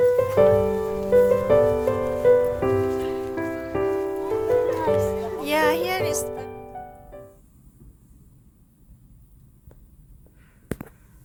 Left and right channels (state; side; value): identical; both; correlation 1.00